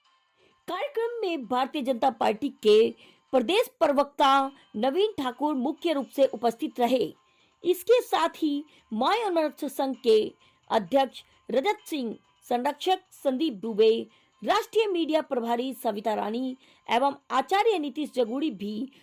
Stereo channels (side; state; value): both; identical; correlation 1.00